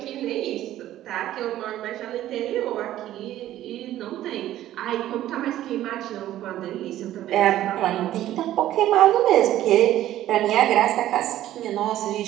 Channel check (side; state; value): left; quieter; 13.4 dB